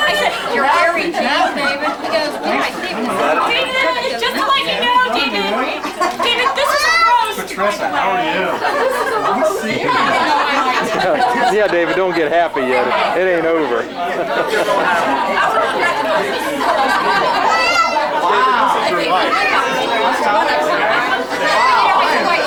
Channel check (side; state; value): both; identical; correlation 1.00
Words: said, you're very cheap, David. He goes, yeah, David. David, just to let you know, David. David, this is a roast. Patricia, how are you? Yeah, David, don't get happy yet. It ain't over.